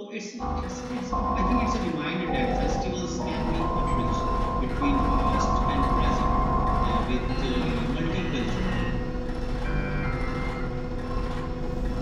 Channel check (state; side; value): identical; both; correlation 1.00